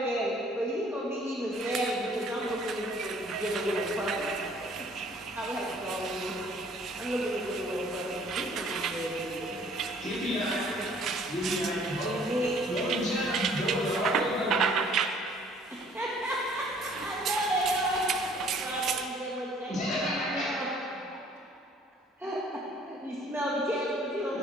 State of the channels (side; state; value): both; normal; correlation 0.57